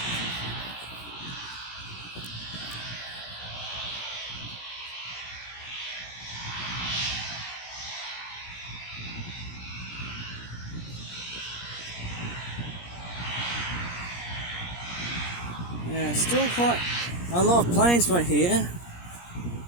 Yeah, still quite a lot of planes right here.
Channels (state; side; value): late; right; 17 ms